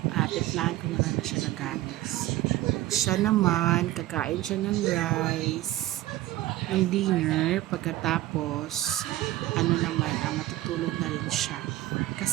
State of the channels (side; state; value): left; quieter; 16.0 dB